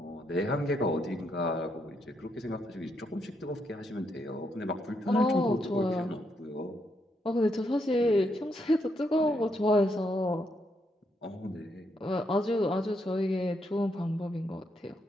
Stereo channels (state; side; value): normal; both; correlation 0.78